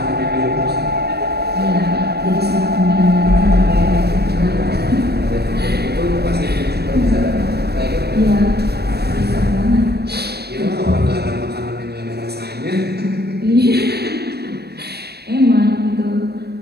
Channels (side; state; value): left; late; 0.47 ms